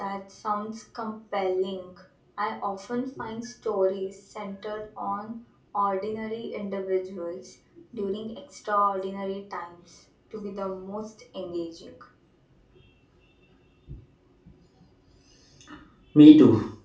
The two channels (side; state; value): both; identical; correlation 1.00